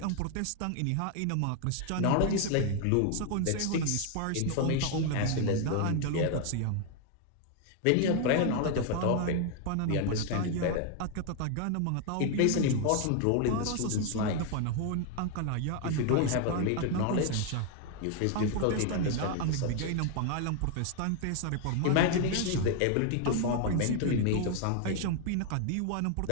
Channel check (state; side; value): different; both; correlation 0.00